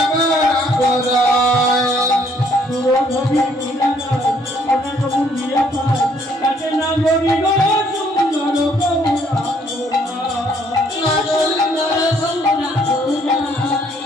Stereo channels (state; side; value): normal; both; correlation 0.65